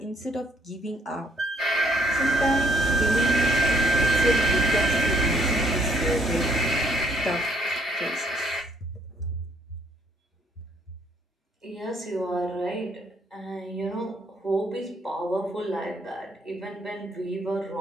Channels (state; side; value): normal; both; correlation 0.67